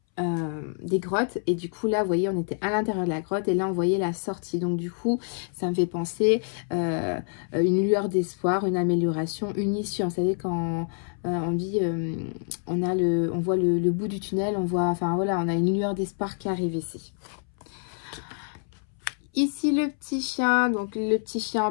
des grottes et du coup là vous voyez on était à l'intérieur de la grotte et là on voyait la sortie, donc du coup ça me fait penser une lueur d'espoir, une amélioration, une issue. Vous savez quand on dit on voit le bout du tunnel, on voit, enfin voilà, on a une lueur d'espoir qui arrive ici. Ici le petit chien, donc le petit chien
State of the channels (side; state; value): right; silent; 60 dB below the other